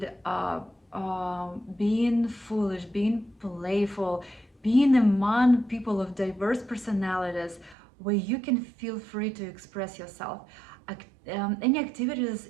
being foolish, being playful, being among people of diverse personalities where you can feel free to express yourself. Any activities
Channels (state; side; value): drops out; left; at 7.8 s